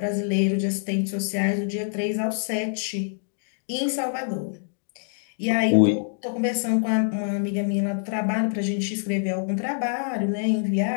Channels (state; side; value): silent; right; digital silence